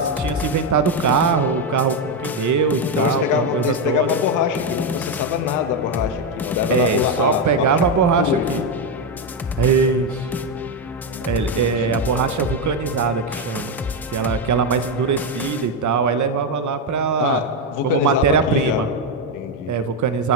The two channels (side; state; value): both; normal; correlation 0.07